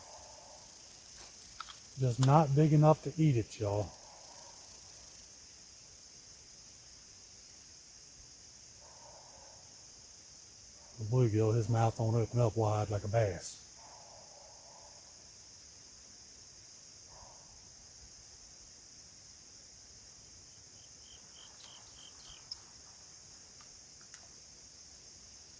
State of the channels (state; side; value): identical; both; correlation 1.00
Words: Just not big enough to eat it, y'all. The bluegill, his mouth won't open up wide like a bass.